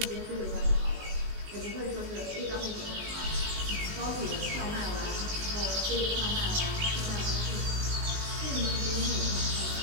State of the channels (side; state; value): left; late; 19 ms